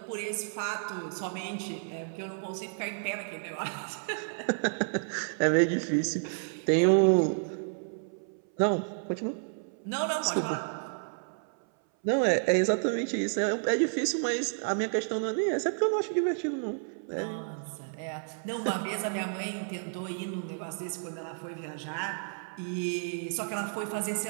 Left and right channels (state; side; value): silent; left; 57 dB below the other